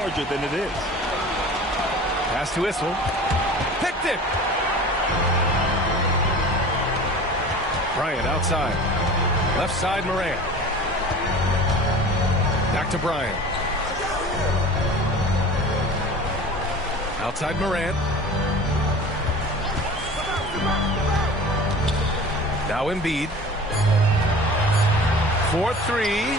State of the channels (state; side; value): normal; both; correlation 0.40